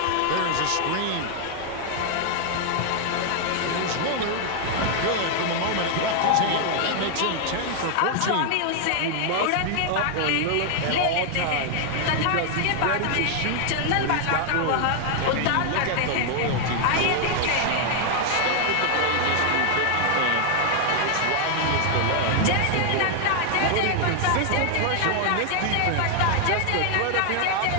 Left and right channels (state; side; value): different; both; correlation 0.00